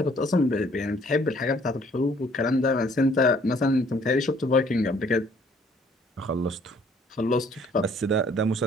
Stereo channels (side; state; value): both; normal; correlation 0.61